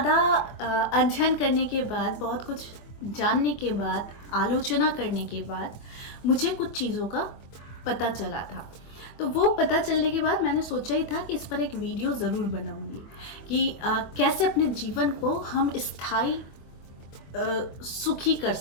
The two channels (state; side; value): late; right; 24 ms